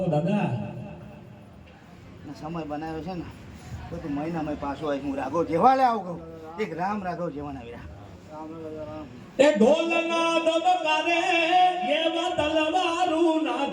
દાદા સમય બનાવ્યો છે ને તો તું મહિનામાં પાછો આવીશ. હું રાઘવ જેવા લે આવું કહું. એક રામ રાઘવ જેવા આવી રહ્યા. એ ઢોલના દબકારે એવા તલવારું ના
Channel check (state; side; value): identical; both; correlation 1.00